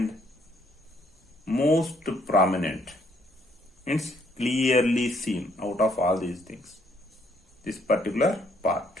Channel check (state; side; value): normal; both; correlation 0.69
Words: most prominent, means clearly seen out of all these things? This particular part.